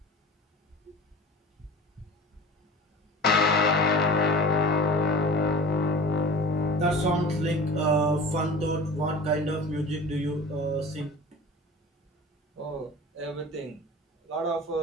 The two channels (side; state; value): both; normal; correlation 0.38